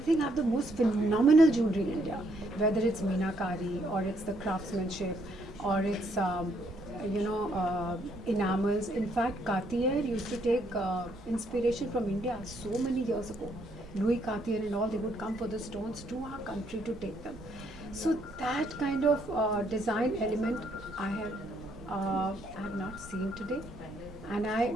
think have the most phenomenal jewelry in India, whether it's meenakari or it's the craftsmanship or it's enamels. In fact, Cartier used to take inspiration from India so many years ago. Louis Cartier and all, they would come for the stones to our country to take them. So that kind of design element I have not seen today, and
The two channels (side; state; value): both; normal; correlation 0.71